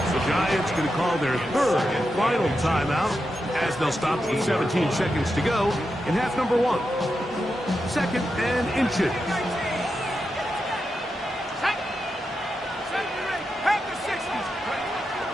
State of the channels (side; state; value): both; normal; correlation 0.88